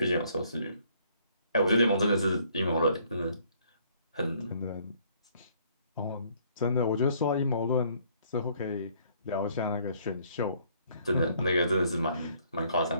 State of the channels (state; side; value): inverted; both; correlation -0.64